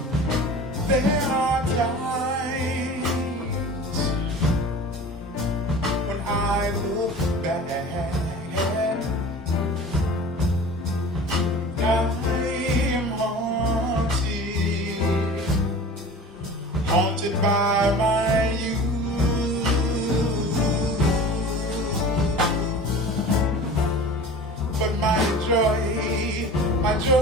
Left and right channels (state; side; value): normal; both; correlation 0.39